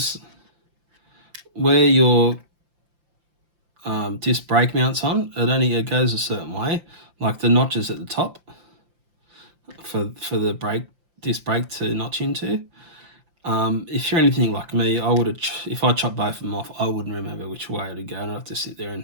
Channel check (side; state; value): left; late; 5.7 ms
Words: where your disc brake mounts on, it goes a certain way, like the notches at the top for the disc brake to notch into. If you're anything like me, I would have, if I chopped both of them off, I wouldn't remember which way to go, and I'd have to sit there